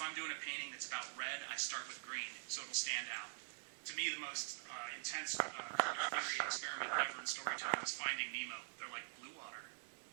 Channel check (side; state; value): left; silent; digital silence